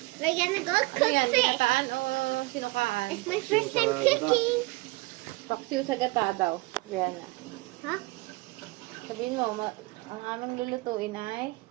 We're gonna go Ano cook yan? fish. Binataan o sinukaan? It's my first time cooking. Paksiw sa gata daw. Rihanna. Huh? Sabihin mo, ang aming lulutuin ay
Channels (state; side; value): quieter; left; 23.5 dB